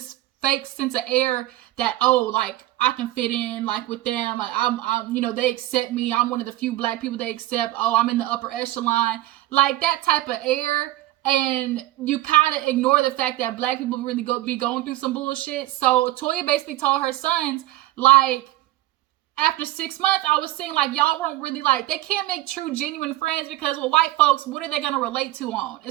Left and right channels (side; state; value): left; quieter; 16.0 dB